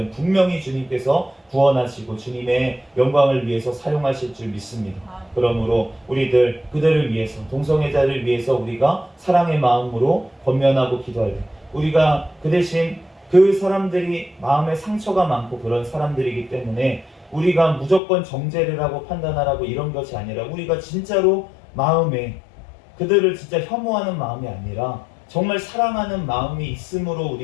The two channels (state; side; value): drops out; right; at 18.0 s